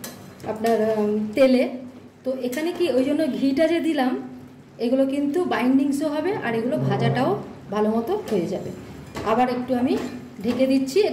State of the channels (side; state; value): both; identical; correlation 1.00